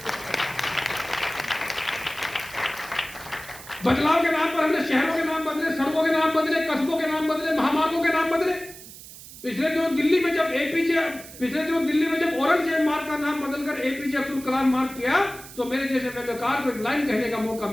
बदलाव के नाम पर हमने शहरों के नाम बदले, सड़कों के नाम बदले, कस्बों के नाम बदले, महामार्गों के नाम बदले। पिछले दिनों दिल्ली में जब औरंगजेब मार्ग का नाम बदलकर एपीजे अब्दुल कलाम मार्ग किया तो मेरे जैसे व्यंग्यकार को एक लाइन कहने का मौका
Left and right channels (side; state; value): right; noise; hiss, 16 dB below the sound